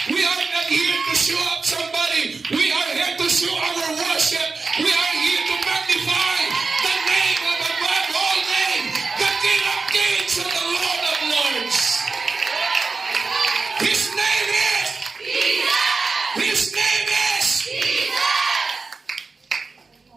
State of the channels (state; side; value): quieter; left; 4.2 dB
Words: we are not here to show up somebody. We are here to show our worship. We are here to magnify the name of above all name, the King of Kings and the Lord of Lords. His name is Jesus. His name is Jesus.